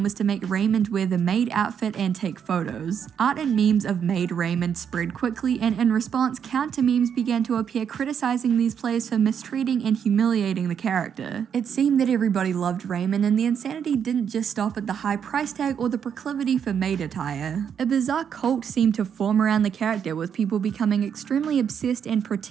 was to make Raymond wear the maid outfit and take photos. Art and memes of maid Raymond spread quickly, and in response, counter memes began to appear criticizing these players for mistreating and humiliating the character. It seemed that everybody loved Raymond, and the insanity didn't just stop at the high price tag or the proclivity for maid attire. A bizarre cult seemed to form around the character, with people becoming extremely obsessed and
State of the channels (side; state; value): left; quieter; 7.8 dB